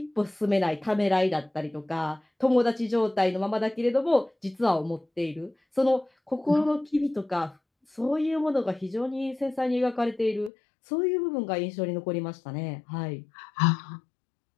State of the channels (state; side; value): drops out; right; at 10.5 s